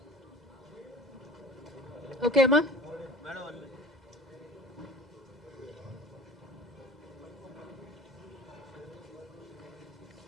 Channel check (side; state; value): both; normal; correlation 0.42